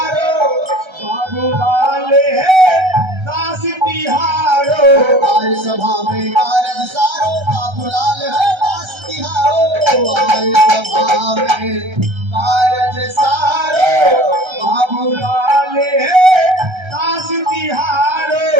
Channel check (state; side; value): late; left; 1.3 ms